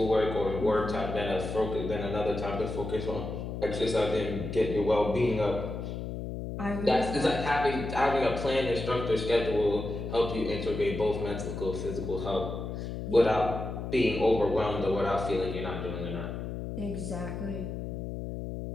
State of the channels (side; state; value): left; noise; hum, 6 dB below the sound